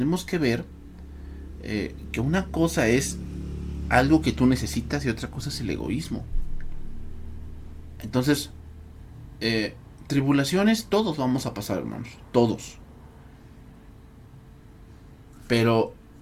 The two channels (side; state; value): both; identical; correlation 1.00